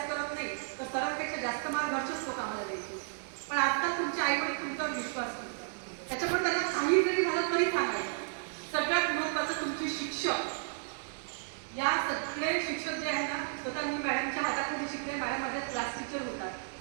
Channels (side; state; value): left; silent; 56 dB below the other